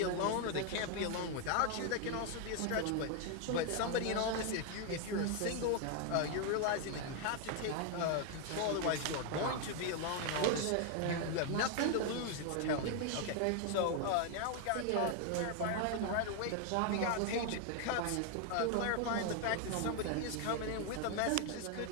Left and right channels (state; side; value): different; both; correlation 0.01